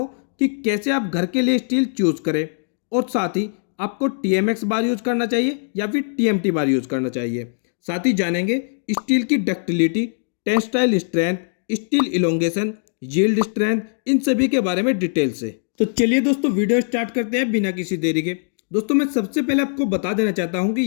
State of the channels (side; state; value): right; silent; digital silence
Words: कि कैसे आप घर के लिए स्टील चूज करें और साथ ही आपको TMX बार यूज करना चाहिए या फिर TMT बार यूज करना चाहिए। साथ ही जानेंगे स्टील की ductility, tensile strength, steel elongation, yield strength, इन सभी के बारे में डिटेल से। तो चलिए दोस्तों वीडियो स्टार्ट करते हैं बिना किसी देरी के। दोस्तों मैं सबसे पहले आपको बता देना चाहता हूं कि